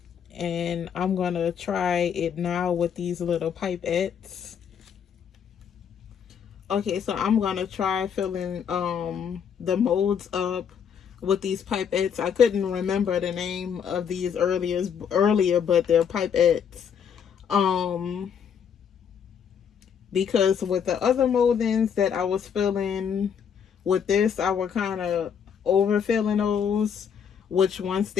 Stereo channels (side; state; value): right; quieter; 7.6 dB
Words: and I'm going to try it now with these little pipettes. Okay, so I'm going to try filling the molds up with these pipettes. I couldn't remember the name of these earlier, but they're pipettes. Because with the other moldings that I was filling with this, I was kind of overfilling those, which once